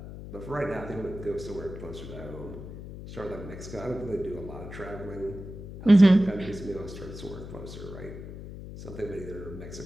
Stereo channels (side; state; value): left; noise; hum, 11 dB below the sound